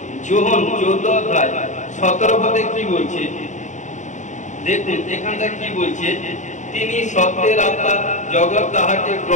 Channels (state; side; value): late; right; 0.35 ms